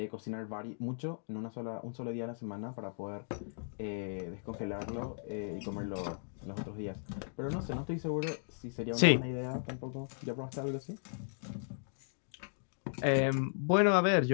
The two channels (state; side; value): silent; right; digital silence